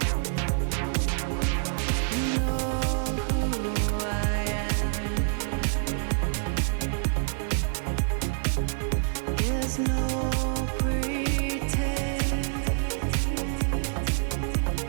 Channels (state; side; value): silent; left; 60 dB below the other